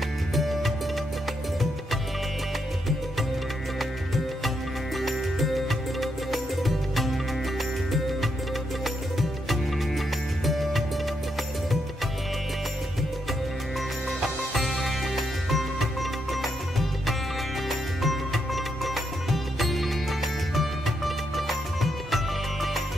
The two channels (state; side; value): normal; both; correlation 0.80